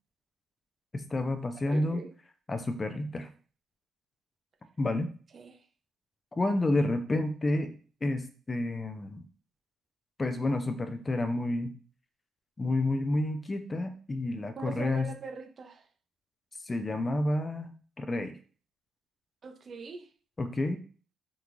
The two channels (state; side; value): normal; both; correlation 0.91